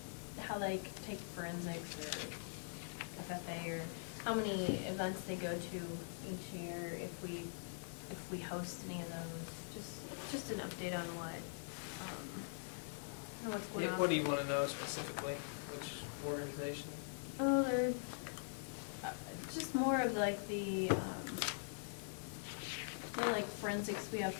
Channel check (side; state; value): right; silent; digital silence